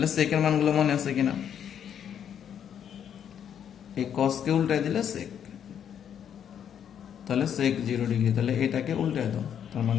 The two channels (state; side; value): quieter; right; 8.9 dB